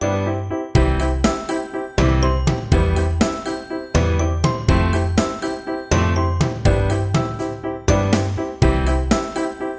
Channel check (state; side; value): identical; both; correlation 1.00